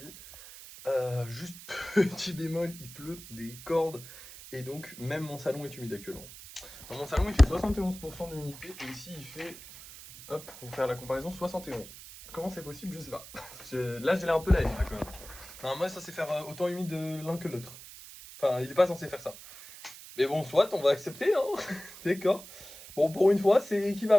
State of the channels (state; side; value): noise; right; hiss, 16 dB below the sound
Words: Juste petit bémol, il pleut des cordes. Et donc, même mon salon est humide actuellement. Dans mon salon, il fait 71% d'humidité. Et ici, il fait, hop, pour faire la comparaison, 71. Comment c'est possible, je sais pas. Là, j'ai l'air un peu la haine, là, quand même. Non, moi, ça c'est faire autant humide l'un que l'autre. Enfin, il est pas censé faire ça. Mais bon, soit, on va accepter, hein. D'accord. Bon, pour une fois, c'est